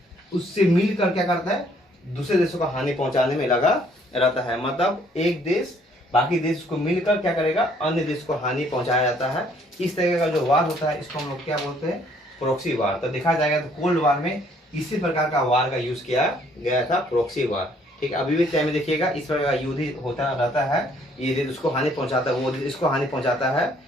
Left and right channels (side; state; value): both; normal; correlation 0.63